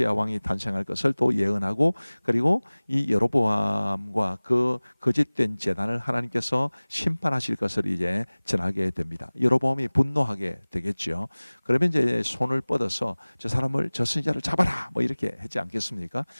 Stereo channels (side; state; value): both; inverted; correlation -1.00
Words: 왕이 탄생할 것을 또 예언하고, 그리고 이 여로보암과 그 거짓된 제단을 하나님께서 심판하실 것을 이제 전하게 됩니다. 여로보암이 분노하게 되겠죠. 그러면 이제 손을 뻗어서 저 사람을, 저 선지자를 잡아라 뭐 이렇게 했지 않겠습니까?